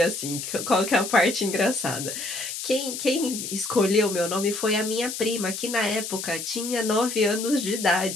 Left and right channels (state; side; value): noise; left; hiss, 6 dB below the sound